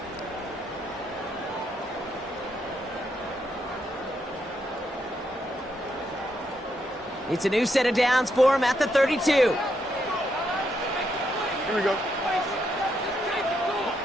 It's a new set of downs for him at the 32. Here we go.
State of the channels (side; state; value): both; normal; correlation 0.78